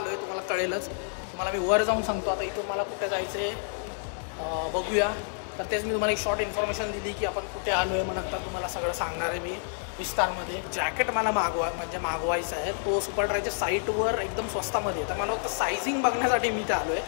आहे तुम्हाला कळेलच. तुम्हाला मी वर जाऊन सांगतो. आता इथून मला कुठे जायचं आहे बघूया. तर तेच मी तुम्हाला एक शॉर्ट इन्फॉर्मेशन दिली की आपण कुठे आलो आहे. मग नंतर तुम्हाला सगळं सांगणार आहे मी विस्तारमध्ये. जॅकेट मला मागवायचं आहे. तो सुपर ड्रायच्या साईटवर एकदम स्वस्तामध्ये. तर मला फक्त सायझिंग बघण्यासाठी मी ते आलो आहे.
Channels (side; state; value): right; silent; 59 dB below the other